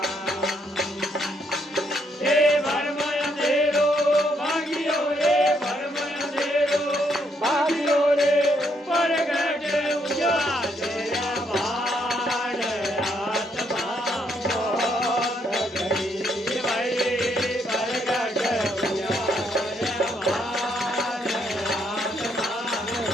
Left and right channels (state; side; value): normal; both; correlation 0.74